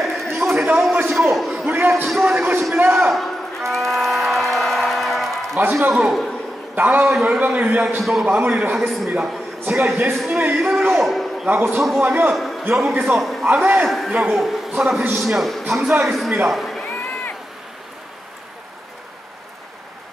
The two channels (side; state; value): both; normal; correlation 0.88